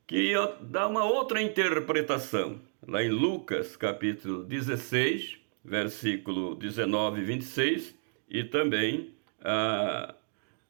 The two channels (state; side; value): silent; left; 57 dB below the other